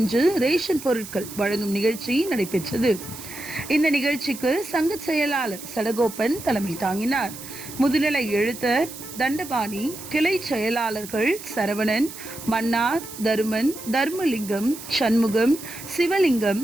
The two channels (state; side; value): noise; right; hiss, 13 dB below the sound